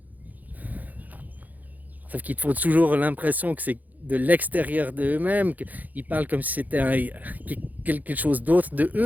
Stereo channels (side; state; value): left; late; 0.081 ms